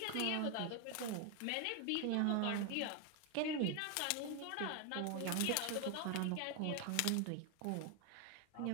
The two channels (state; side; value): different; both; correlation 0.01